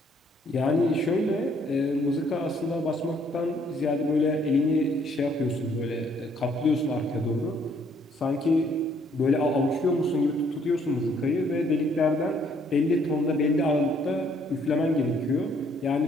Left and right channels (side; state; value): both; normal; correlation 0.65